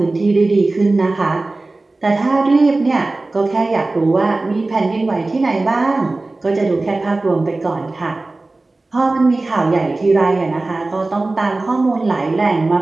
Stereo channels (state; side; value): quieter; left; 3.2 dB